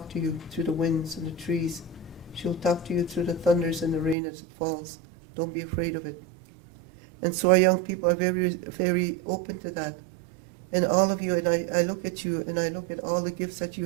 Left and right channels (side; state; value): left; drops out; at 4.2 s